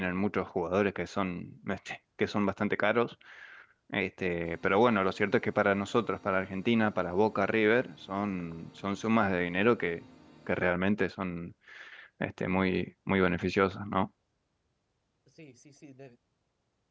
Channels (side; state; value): both; identical; correlation 1.00